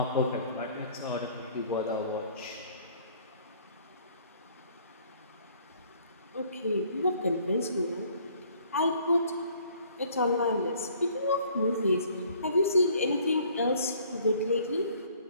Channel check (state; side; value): inverted; both; correlation -0.58